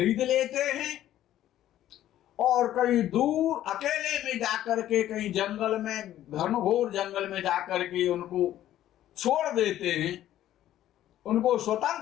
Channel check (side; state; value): right; quieter; 12.7 dB